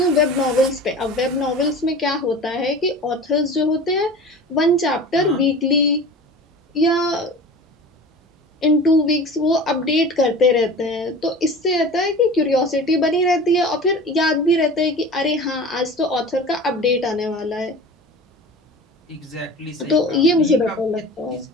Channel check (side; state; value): both; normal; correlation 0.37